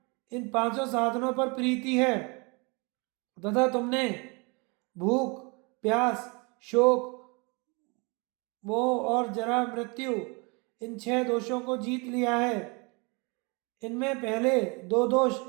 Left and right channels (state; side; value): quieter; left; 30.2 dB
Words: इन पांचों साधनों पर प्रीति है तथा तुमने भूख, प्यास, शोक, मोह और जरा, मृत्यु, इन 6 दोषों को जीत लिया है। इनमें पहले 2 दोष